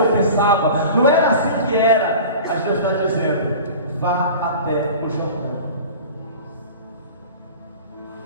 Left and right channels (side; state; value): both; inverted; correlation -0.38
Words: pensava, não era assim que era. Mas Deus está dizendo: vá até o Jordão.